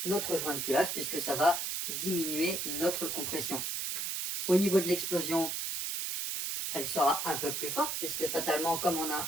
notre joint de culasse, puisque ça va diminuer notre compression. Au niveau de l'explosion, elle sera un peu plus forte, puisque fatalement comme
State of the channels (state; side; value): noise; right; hiss, 2 dB below the sound